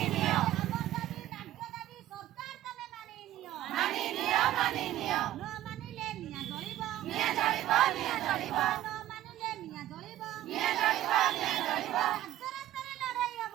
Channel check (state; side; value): quieter; left; 13.8 dB